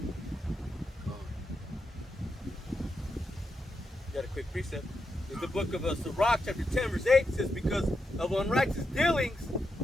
Got a quick precept. In the book of Sirach, chapter 10, verse 8, says, because of unrighteous dealings,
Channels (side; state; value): both; normal; correlation 0.85